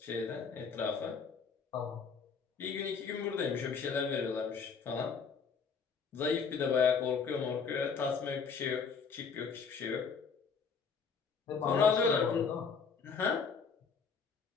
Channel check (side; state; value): right; quieter; 5.7 dB